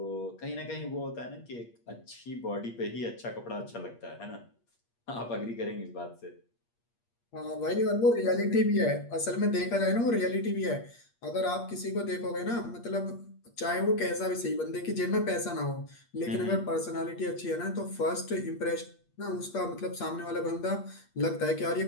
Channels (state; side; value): late; right; 8.5 ms